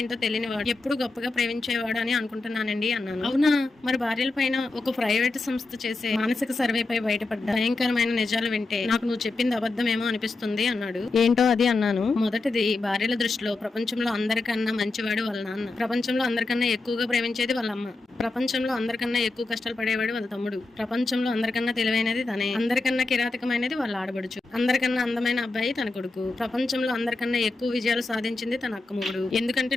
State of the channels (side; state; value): right; quieter; 3.4 dB